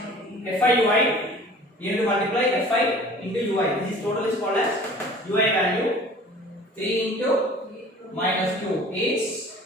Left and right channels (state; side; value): normal; both; correlation 0.46